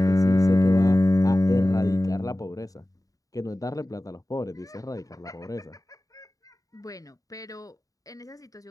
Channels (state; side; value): late; right; 0.17 ms